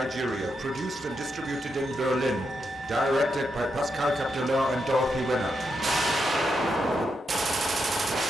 produced and distributed in Berlin, directed by Pascal Capdelain and Dorothee Wenner.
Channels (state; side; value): normal; both; correlation 0.83